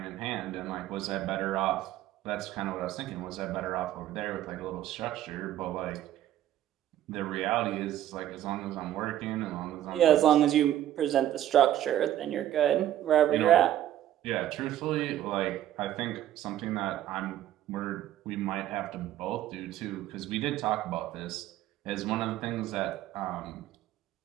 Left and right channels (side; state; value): left; quieter; 12.4 dB